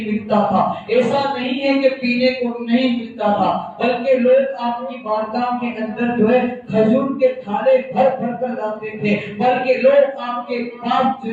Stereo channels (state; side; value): identical; both; correlation 1.00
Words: ملتا تھا، ایسا نہیں ہے کہ پینے کو نہیں ملتا تھا، بلکہ لوگ آپ کی بارگاہ کے اندر جو ہے کھجور کے تھالے بھر کر لاتے تھے، بلکہ لوگ آپ کے پاس